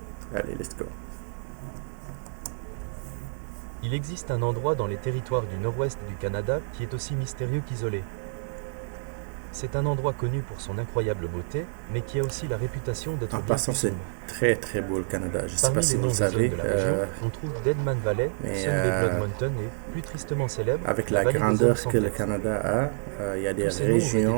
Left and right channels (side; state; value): left; silent; digital silence